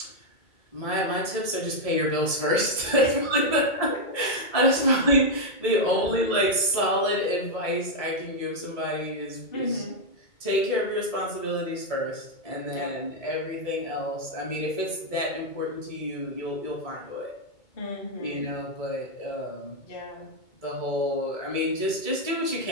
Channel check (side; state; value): right; late; 2.2 ms